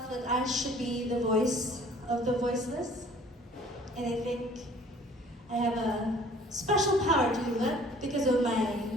that I should be the voice of the voiceless. And I think I have a special power to do that because of my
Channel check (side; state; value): both; normal; correlation 0.53